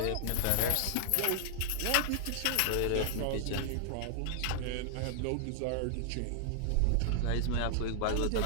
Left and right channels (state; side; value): different; both; correlation 0.00